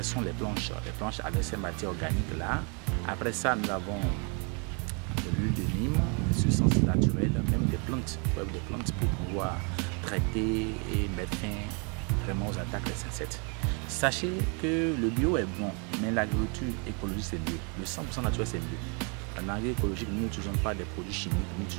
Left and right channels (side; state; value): left; quieter; 36.0 dB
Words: les planches avec ces matières organiques-là. Après ça, nous avons de l'huile de Nîmes, des substances naturelles, même des plantes pour pouvoir traiter et mettre fin vraiment aux attaques des insectes. Sachez que le bio est bon, mais l'agriculture écologique c'est mieux. Le 100% naturel c'est mieux. En agroécologique, nous n'utilisons pas des produits chimiques, nous